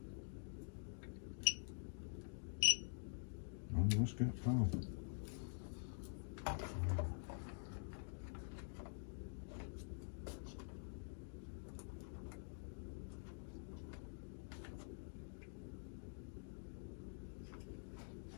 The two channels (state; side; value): silent; right; digital silence